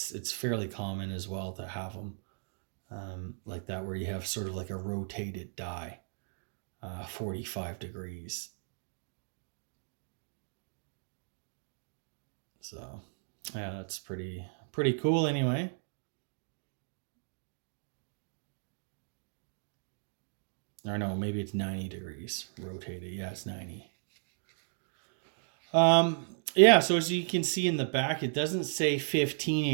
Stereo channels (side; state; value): left; silent; digital silence